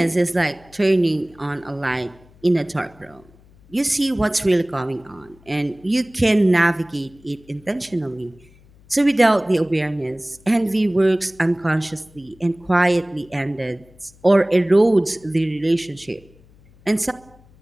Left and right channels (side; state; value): left; noise; hum, 27 dB below the sound